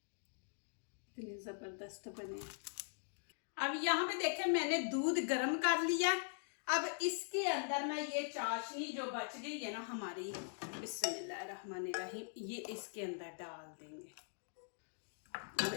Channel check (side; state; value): right; silent; digital silence